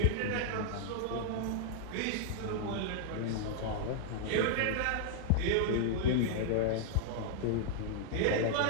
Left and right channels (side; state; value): both; different; correlation -0.01